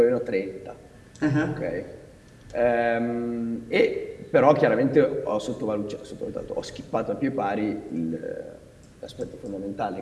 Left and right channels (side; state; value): both; identical; correlation 1.00